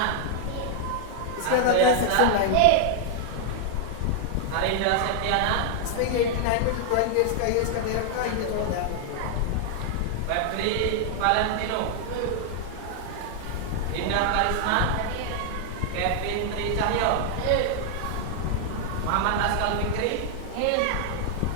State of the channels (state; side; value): different; both; correlation 0.00